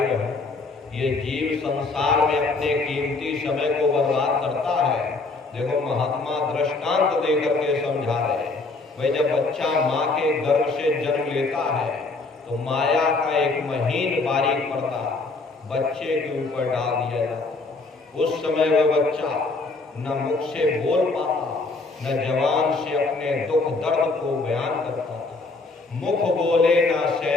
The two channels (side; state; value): right; quieter; 3.6 dB